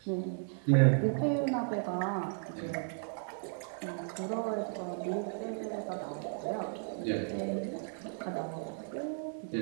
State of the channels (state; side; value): silent; left; 55 dB below the other